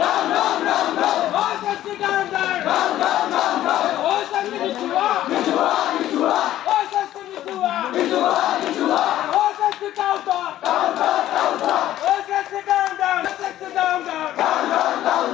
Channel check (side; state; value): right; quieter; 13.3 dB